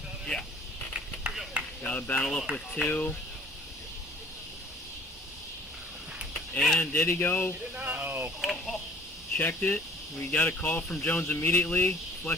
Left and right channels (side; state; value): both; normal; correlation 0.53